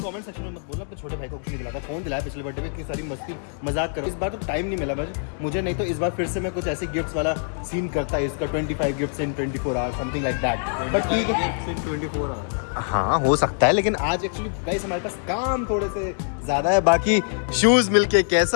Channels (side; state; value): right; silent; digital silence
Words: सेक्शन में मत बोलना अपने छोटे भाई को कुछ नहीं दिलाता फोन दिलाया पिछले बर्थडे में इतनी सारी मस्ती मजाक करो इस बार तो टाइम नहीं मिला मुझे नहीं तो इस बार फिर से मैं कुछ ऐसे गिफ्ट्स वाला सीन करता है इसका 25 gifts in 24 hours something like that but ठीक है 24 आवर्स हाँ हो सकता है लेकिन आज एक्चुअली गाइस हमारे पास काम थोड़े से ज्यादा है बाकी शूज मिलके